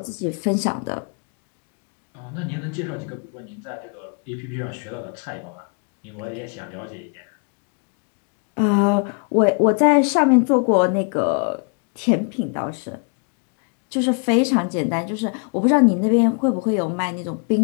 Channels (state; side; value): quieter; right; 39.2 dB